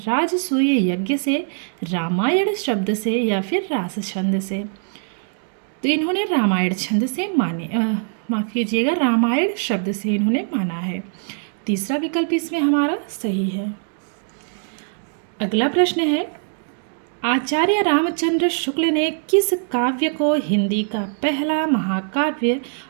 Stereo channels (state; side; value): silent; left; digital silence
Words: यज्ञ से, रामायण शब्द से या फिर रास छंद से? तो इन्होंने रामायण छंद से माने, माफ कीजिएगा, रामायण शब्द से इन्होंने माना है। तीसरा विकल्प इसमें हमारा सही है। अगला प्रश्न है, आचार्य रामचंद्र शुक्ल ने किस काव्य को हिंदी का पहला महाकाव्य